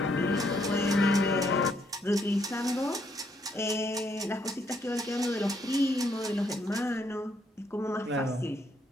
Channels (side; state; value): both; normal; correlation 0.72